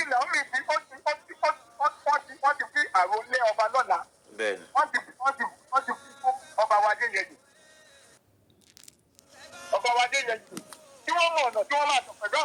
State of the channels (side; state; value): both; identical; correlation 1.00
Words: Fún Naomi tí wọ́n ti fi àròlé ọba lọ́la. Bẹ́ẹ̀ni. Wọ́n ti fi fún ọba wa Adéyẹyè. Ọba wa Adéyẹyè tí wọ́n mọ̀ ọ̀nà tí wọ́n máa tọ̀ pẹ̀lú